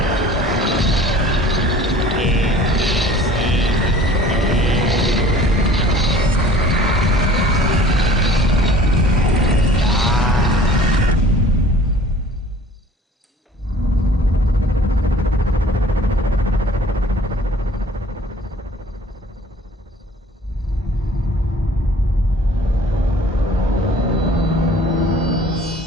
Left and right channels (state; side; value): normal; both; correlation 0.49